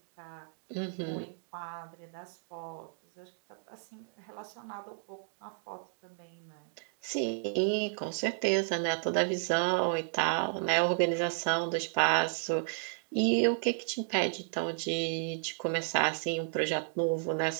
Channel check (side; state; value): left; silent; digital silence